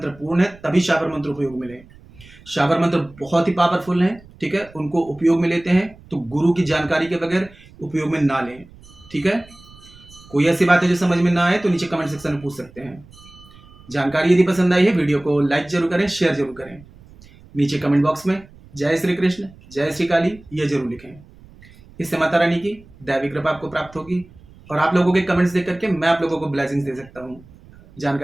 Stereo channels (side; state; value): right; noise; rumble, 23 dB below the sound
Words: पूर्ण है तभी शाबर मंत्र उपयोग मिले। शाबर मंत्र बहुत ही पावरफुल हैं, ठीक है, उनको उपयोग में लेते हैं तो गुरु की जानकारी के बगैर उपयोग में ना लें, ठीक है। कोई ऐसी बात है जो समझ में ना आए तो नीचे कमेंट सेक्शन में पूछ सकते हैं। जानकारी यदि पसंद आई है वीडियो को लाइक जरूर करें, शेयर जरूर करें। नीचे कमेंट बॉक्स में जय श्री कृष्ण, जय श्री काली ये जरूर लिखें। इससे माता रानी की दैवी कृपा आपको प्राप्त होगी और आप लोगों के कमेंट्स देख करके मैं आप लोगों को ब्लेसिंग्स दे सकता हूँ।